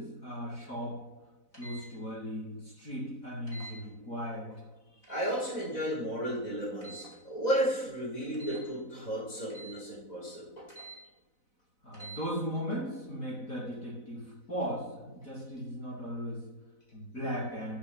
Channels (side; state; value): right; late; 4.0 ms